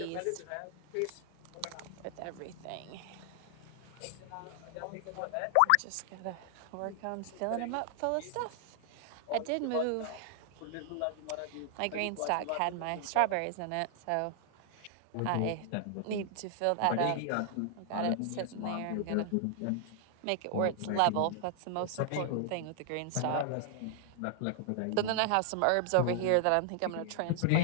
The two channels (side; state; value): both; different; correlation 0.00